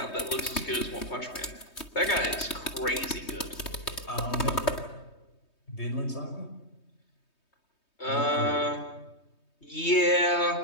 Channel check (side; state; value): right; late; 3.2 ms